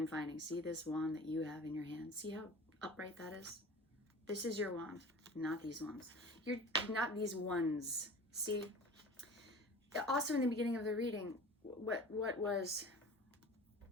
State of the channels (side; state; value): both; normal; correlation 0.39